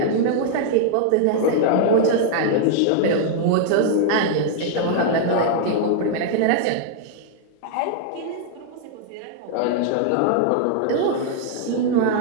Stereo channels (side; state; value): both; different; correlation -0.01